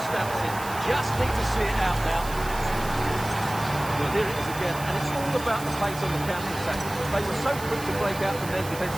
stamps it. Just need to see it out now. Well, here it is again, and it's all about the pace on the counter-attack. They were so quick to break out from their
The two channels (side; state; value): right; noise; hiss, 13 dB below the sound